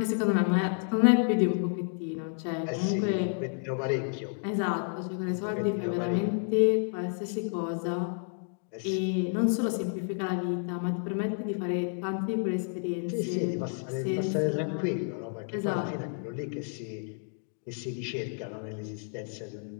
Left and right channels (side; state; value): right; silent; 58 dB below the other